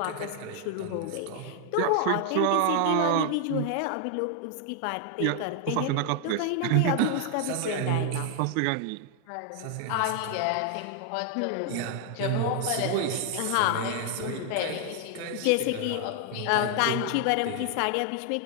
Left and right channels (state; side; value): different; both; correlation 0.00